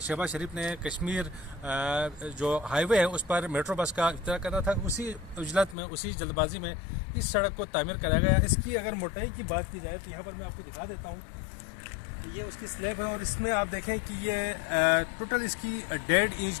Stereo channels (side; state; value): right; drops out; at 5.8 s